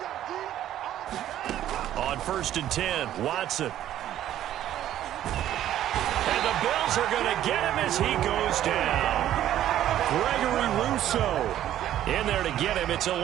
On 1st and 10, Watson. And the Bills are going to get him as he goes down. Gregory Rousseau in there to get him. It's a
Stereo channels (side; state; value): left; quieter; 12.1 dB